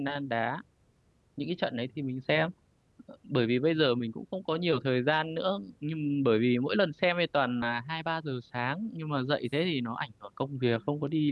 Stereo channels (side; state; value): both; identical; correlation 1.00